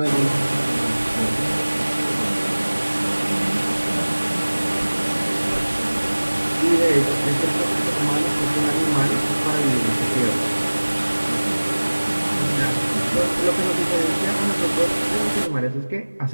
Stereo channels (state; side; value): inverted; both; correlation -1.00